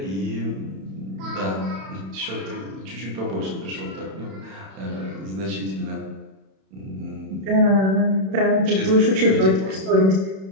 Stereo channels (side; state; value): left; late; 31 ms